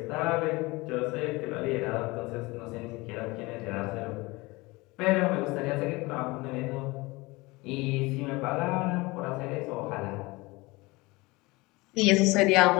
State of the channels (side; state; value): right; quieter; 23.0 dB